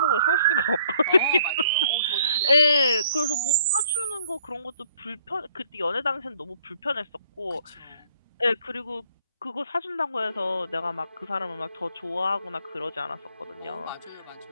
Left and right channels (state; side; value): inverted; both; correlation -0.63